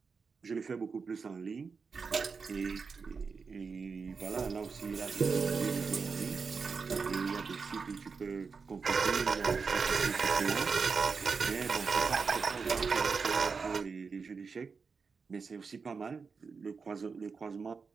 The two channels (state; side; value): quieter; left; 5.1 dB